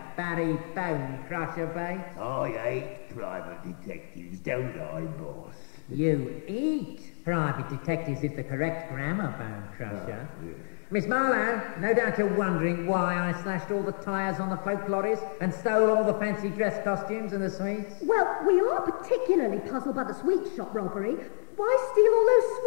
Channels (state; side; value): silent; right; 58 dB below the other